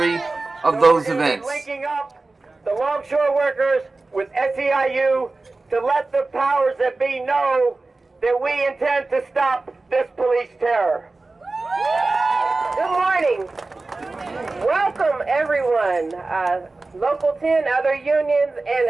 of those events. Linking up the longshore workers with SEIU to let the powers that be know that we intend to stop this police terror. Good morning. Welcome everyone, Local 10, other unions, and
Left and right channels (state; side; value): quieter; left; 3.4 dB